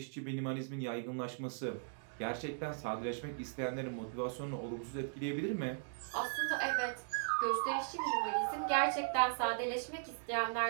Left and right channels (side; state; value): left; silent; digital silence